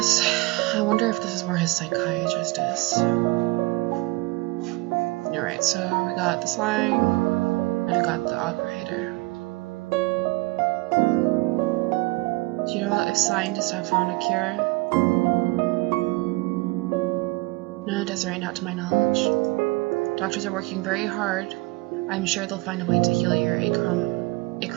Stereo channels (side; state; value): left; quieter; 23.9 dB